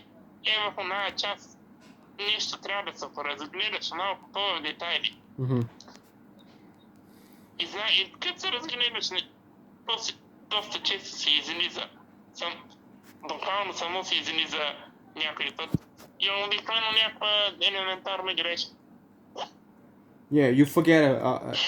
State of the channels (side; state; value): both; identical; correlation 1.00